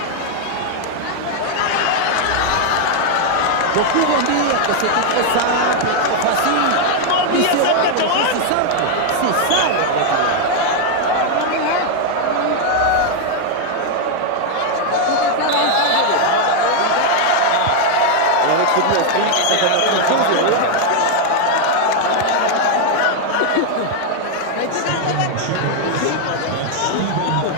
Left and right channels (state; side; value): different; both; correlation 0.00